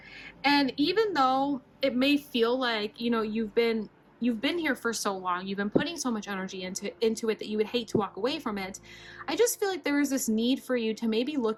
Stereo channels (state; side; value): identical; both; correlation 1.00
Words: And even though it may feel like, you know, you've been here for so long, you've been putting so much energy into it that you would hate to walk away from it, I just feel like there is this need for you to maybe